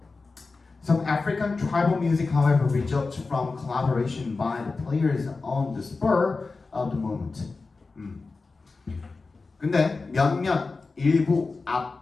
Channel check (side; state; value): right; quieter; 4.0 dB